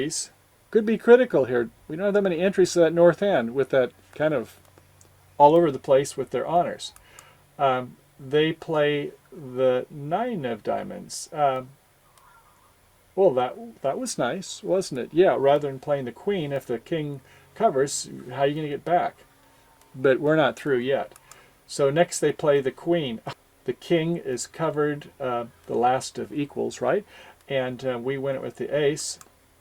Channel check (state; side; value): identical; both; correlation 1.00